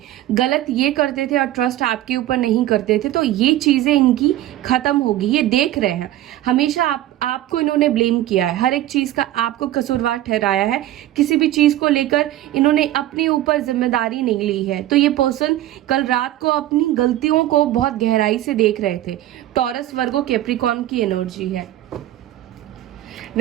गलत ये करते थे और ट्रस्ट आपके ऊपर नहीं करते थे, तो ये चीजें इनकी खत्म होगी। ये देख रहे हैं, हमेशा आपको इन्होंने ब्लेम किया है, हर एक चीज का आपको कसूरवार ठहराया है, किसी भी चीज को लेकर इन्होंने अपने ऊपर जिम्मेदारी नहीं ली है। तो ये पर्सन कल रात को अपनी गलतियों को बहुत गहराई से देख रहे थे। टॉरस, वर्गो, कैप्रिकॉर्न की एनर्जी है।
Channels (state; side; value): quieter; left; 14.2 dB